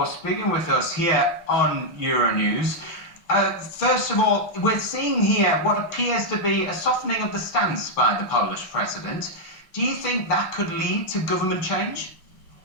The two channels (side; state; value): right; late; 6.1 ms